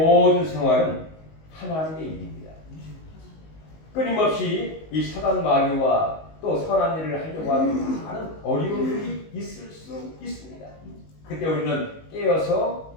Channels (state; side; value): late; right; 19 ms